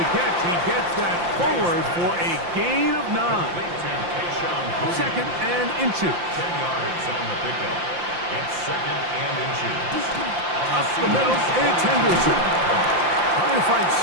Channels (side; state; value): left; late; 5.8 ms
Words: catch, he gets that forward for a gain of 9. Second and inches. 10 yards on the pickup. It's second and inches. Up the middle, it's Henderson. Trying to find